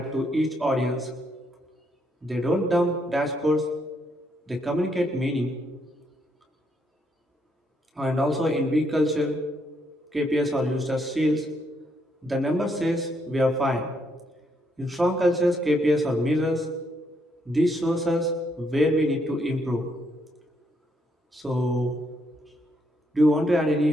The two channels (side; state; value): both; normal; correlation 0.75